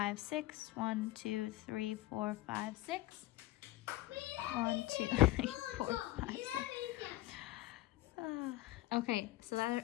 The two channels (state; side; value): quieter; right; 17.4 dB